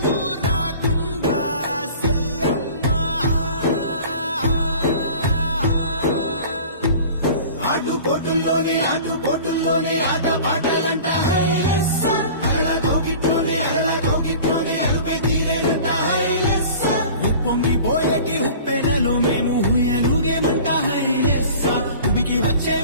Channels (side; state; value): both; inverted; correlation -0.42